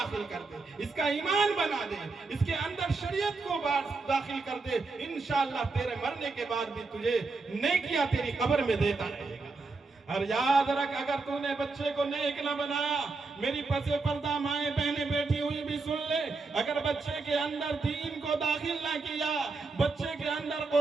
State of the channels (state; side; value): quieter; left; 3.9 dB